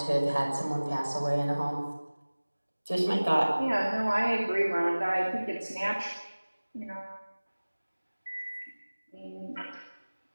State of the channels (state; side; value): inverted; both; correlation -1.00